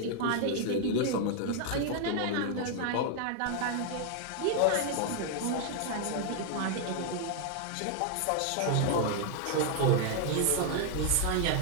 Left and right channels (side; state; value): both; different; correlation 0.00